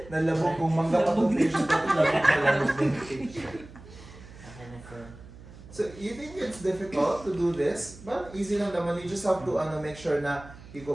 Nalabog kung mangga pa itong patient natin. Nalabog na yung patient. Okay na, sir. So, you think it's difficult to do this? But easy lang naman. You just have to make sure na you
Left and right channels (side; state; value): right; noise; hum, 18 dB below the sound